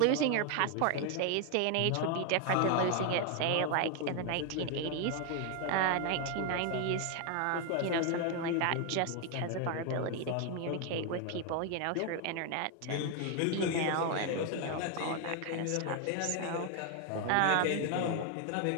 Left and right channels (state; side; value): different; both; correlation 0.01